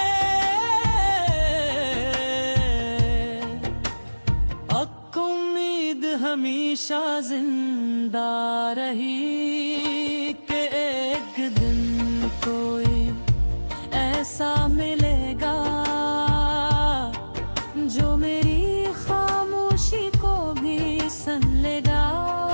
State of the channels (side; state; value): both; inverted; correlation -1.00